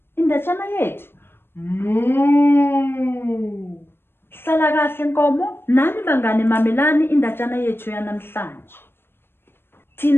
indatshana yethu? Hlala kahle Nkomo, nani bangane mamelani indatshana yethu yanamhlanje.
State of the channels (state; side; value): late; right; 0.11 ms